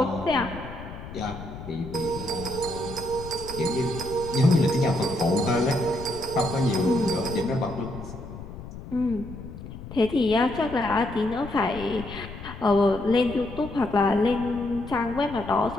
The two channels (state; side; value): noise; left; rumble, 12 dB below the sound